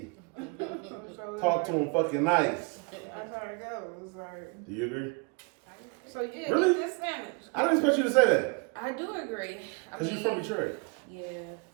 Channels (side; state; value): left; quieter; 33.0 dB